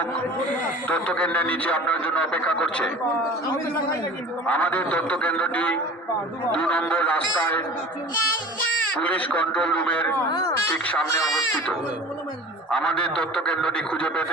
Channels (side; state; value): both; normal; correlation 0.40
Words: তথ্য কেন্দ্রের নিচে আপনার জন্য অপেক্ষা করছে। আমাদের তথ্য কেন্দ্রটি 2 নম্বর রাস্তায় পুলিশ কন্ট্রোল রুমের ঠিক সামনে অবস্থিত। আমাদের তথ্য কেন্দ্রটি খুঁজে